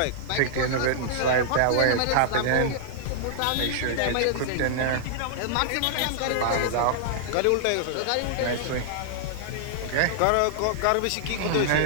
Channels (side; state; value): both; different; correlation -0.01